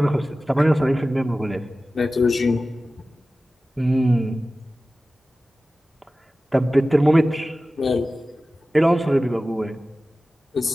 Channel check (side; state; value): both; normal; correlation 0.96